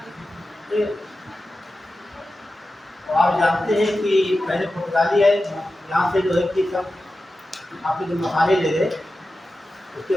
ठीक है। और आप जानते हैं कि पहले पुर्तगाली है, यहाँ से जो है कि सब आपके जो मसाले ले गए, उसके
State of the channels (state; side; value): normal; both; correlation 0.93